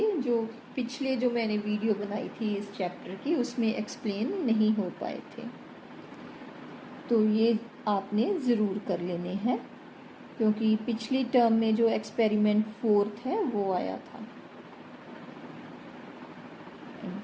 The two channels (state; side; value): identical; both; correlation 1.00